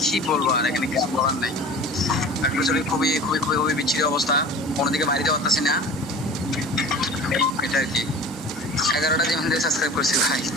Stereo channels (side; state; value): both; normal; correlation 0.39